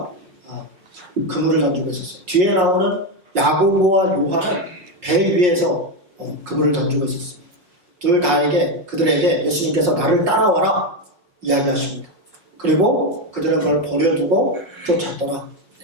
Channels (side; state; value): left; late; 5.5 ms